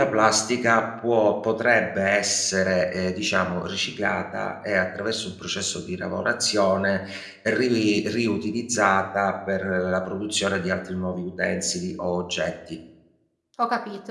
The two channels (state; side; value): identical; both; correlation 1.00